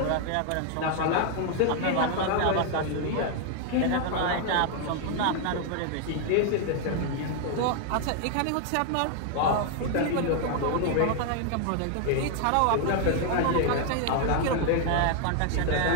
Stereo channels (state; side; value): different; both; correlation 0.00